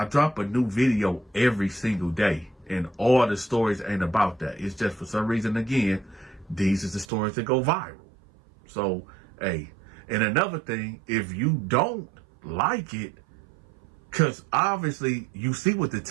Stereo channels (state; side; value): drops out; left; at 7.1 s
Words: drop a new video every single day. And all the stories ain't about that. It's just for some reason, again, these is the stories that go viral. So, hey, and another thing, if you don't like it, because obviously you see what the